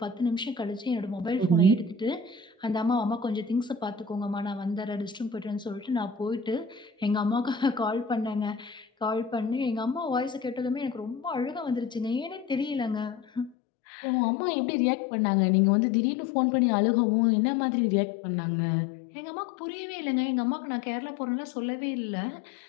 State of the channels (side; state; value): right; drops out; at 13.6 s